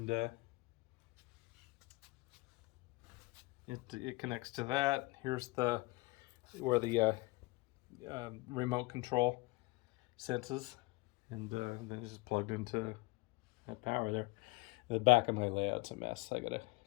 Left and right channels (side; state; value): right; quieter; 23.1 dB